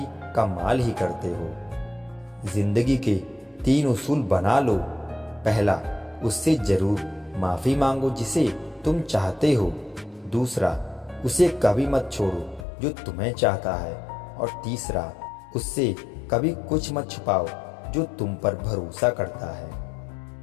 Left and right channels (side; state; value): right; drops out; at 12.7 s